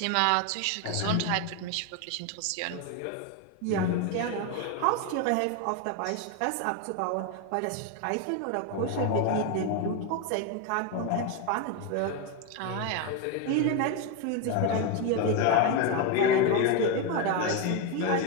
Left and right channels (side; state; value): both; different; correlation 0.02